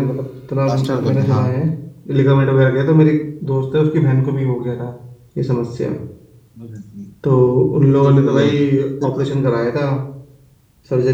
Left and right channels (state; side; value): identical; both; correlation 1.00